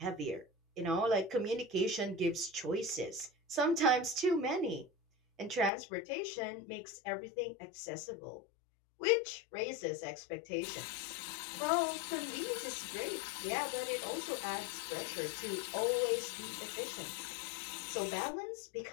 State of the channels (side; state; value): right; drops out; at 5.7 s